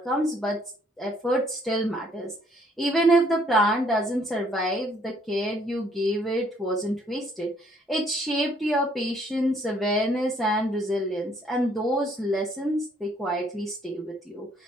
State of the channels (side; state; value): both; normal; correlation 0.65